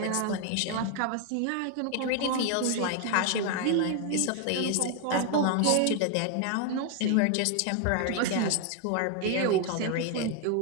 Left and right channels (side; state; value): both; different; correlation 0.00